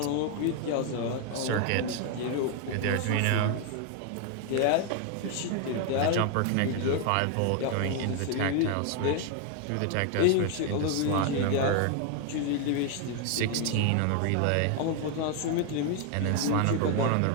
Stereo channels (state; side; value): different; both; correlation 0.00